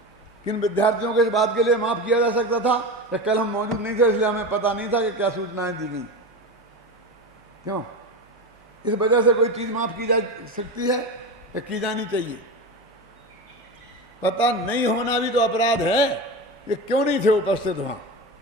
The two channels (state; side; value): normal; both; correlation 0.23